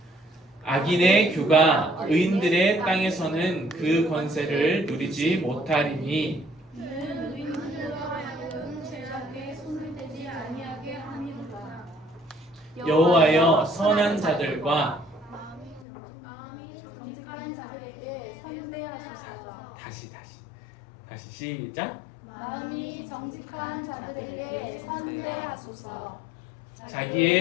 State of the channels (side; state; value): right; drops out; at 15.9 s